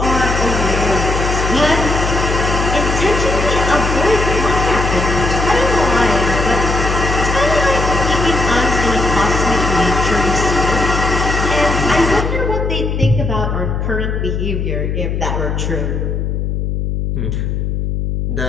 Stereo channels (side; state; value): left; noise; hum, 1 dB below the sound